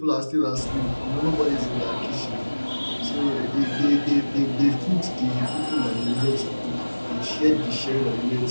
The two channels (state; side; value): inverted; both; correlation -1.00